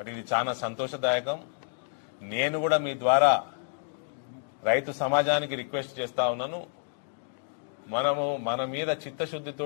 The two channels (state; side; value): silent; right; digital silence